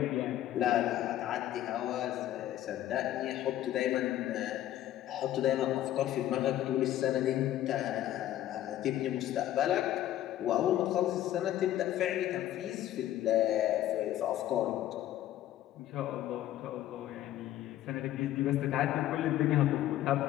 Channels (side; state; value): right; quieter; 13.0 dB